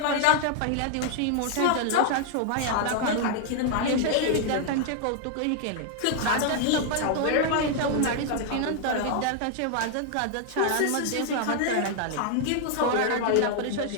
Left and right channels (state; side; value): different; both; correlation 0.00